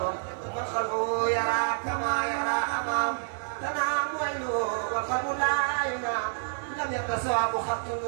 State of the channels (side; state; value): left; silent; digital silence